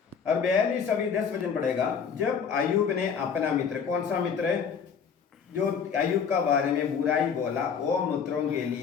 और 42 अभी 10 वचन पड़ेगा। जब अय्यूब ने अपना मित्र, कौन सा मित्र है जो अय्यूब का बारे में बुराई बोला, वो मित्रों के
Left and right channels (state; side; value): quieter; right; 6.6 dB